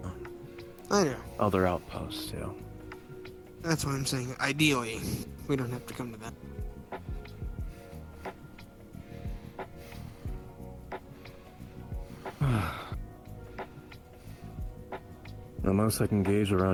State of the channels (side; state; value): both; identical; correlation 1.00